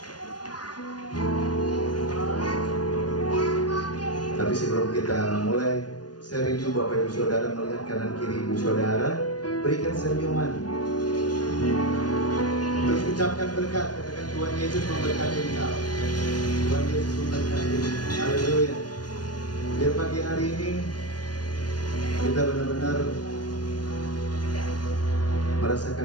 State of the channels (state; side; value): late; right; 0.69 ms